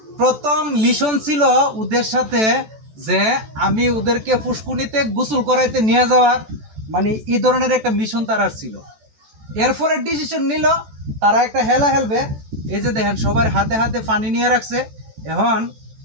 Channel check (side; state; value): left; late; 14 ms